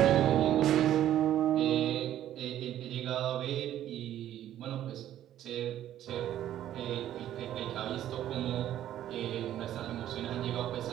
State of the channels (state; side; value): quieter; left; 11.9 dB